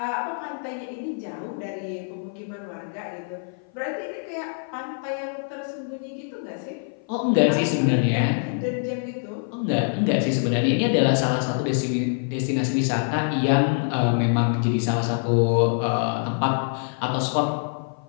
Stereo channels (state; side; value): silent; right; 55 dB below the other